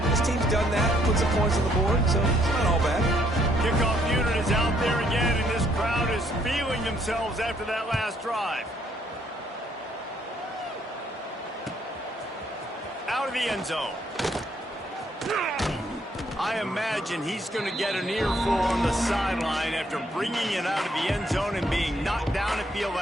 This team's done that. Put some points on the board, so it's not all bad. Kickoff unit is out there again, and this crowd is feeling themselves after that last drive. Out of the end zone. I imagine he's going to get an earful on the sideline after bringing it out of the end zone and being knocked down at the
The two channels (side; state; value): both; normal; correlation 0.69